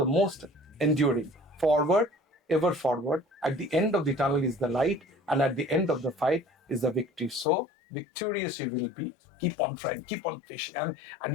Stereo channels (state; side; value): drops out; right; at 7.5 s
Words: most enduring. Forward, ever forward. At the end of the tunnel is the light, and at the end of the fight is the victory. So victorious you will be. Keep on trying, keep on fishing, and